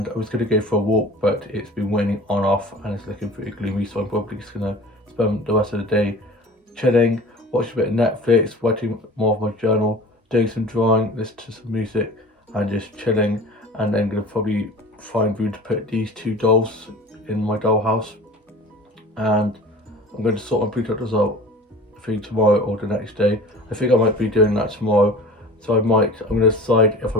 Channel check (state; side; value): normal; both; correlation 0.40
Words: I was going to go for a walk, but it's been raining on off and it's looking pretty gloomy, so I'm probably just going to spend the rest of the day chilling, watching a bit of Netflix, writing more of my journal, doing some drawing, listening to some music, and just chilling. And then going to probably find room to put these 2 dolls in my dollhouse, and I'm going to sort my pre-cut result, I think tomorrow or the next day. I think I might be doing that tomorrow, so I'm going to decide if I